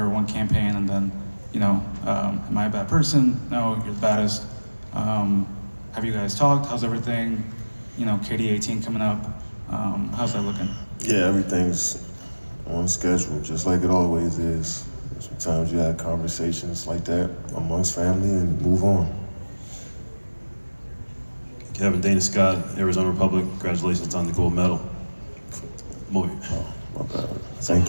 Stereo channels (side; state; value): both; inverted; correlation -1.00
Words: campaign, and then, am I a bad person? No, you're the baddest. Have you guys talked? How's everything? KD 18 coming up. How's that looking? Yeah, everything's on schedule, just like it always is. Sometimes you have conversations like that amongst family and move on. Kevin, Dana Scott, Arizona Republic, congratulations on the gold medal. Oh, my bad. Thank